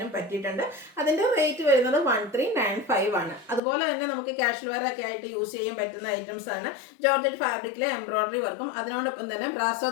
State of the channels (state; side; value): drops out; right; at 3.6 s